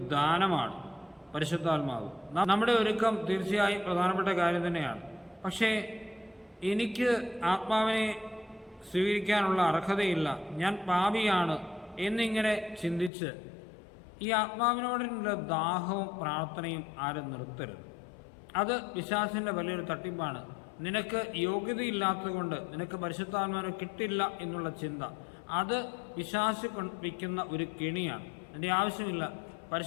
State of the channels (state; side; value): drops out; right; at 13.1 s